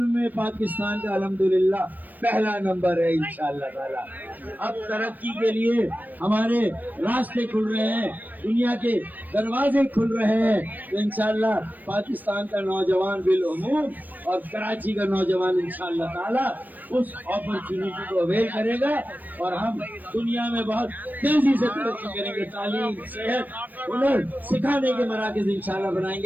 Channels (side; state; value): left; late; 0.087 ms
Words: میں پاکستان کا الحمدللہ پہلا نمبر ہے انشاءاللہ تعالی۔ اب ترقی کے لیے ہمارے راستے کھل رہے ہیں، دنیا کے دروازے کھل رہے ہیں، تو انشاءاللہ پاکستان کا نوجوان بالعموم اور کراچی کا نوجوان انشاءاللہ تعالی اس اپرچونٹی کو اویل کرے گا، اور ہم دنیا میں بہت تیزی سے ترقی کریں گے۔ تعلیم، صحت، ہنر سکھانے کے مراکز انشاءاللہ بنائیں